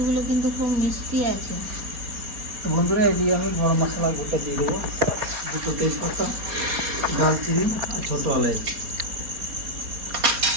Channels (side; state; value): left; late; 4.2 ms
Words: কিন্তু খুব মিষ্টি আছে। তো বন্ধুরা এদিকে আমি গরম মশলা গোটা দিয়ে দেবো, দুটো তেজপাতা, দারচিনি আর ছোটো এলাচ।